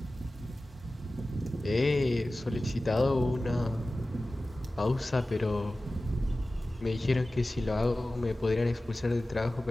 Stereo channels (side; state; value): both; normal; correlation 0.96